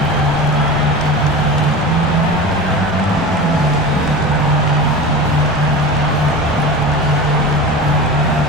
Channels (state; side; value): normal; both; correlation 0.31